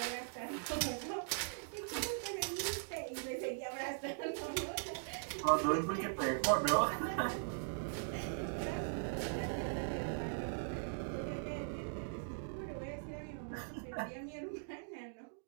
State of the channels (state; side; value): silent; left; digital silence